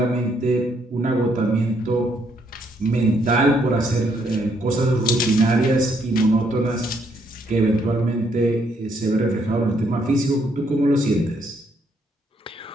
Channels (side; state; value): both; normal; correlation 0.72